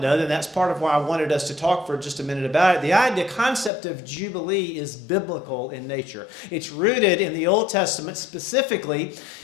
then that's part of why I wanted us to talk for just a minute about it. The concept of Jubilee is biblical in nature. It's rooted in the Old Testament, specifically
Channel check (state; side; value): drops out; right; at 3.7 s